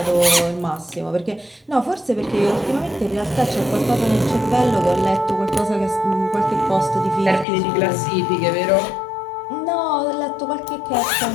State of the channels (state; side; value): drops out; right; at 7.5 s